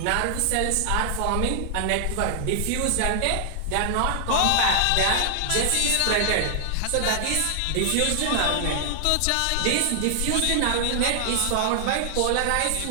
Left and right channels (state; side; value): different; both; correlation 0.00